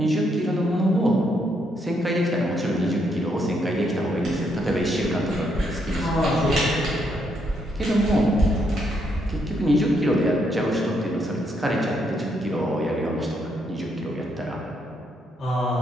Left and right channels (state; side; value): normal; both; correlation 0.75